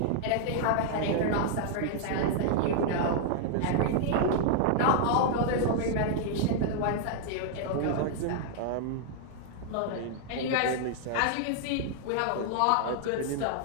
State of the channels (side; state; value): both; different; correlation -0.01